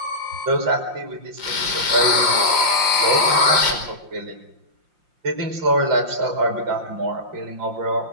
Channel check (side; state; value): left; late; 5.7 ms